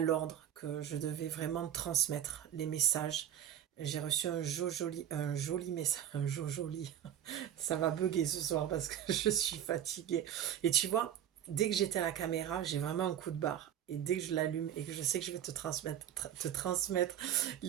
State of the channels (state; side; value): quieter; left; 10.4 dB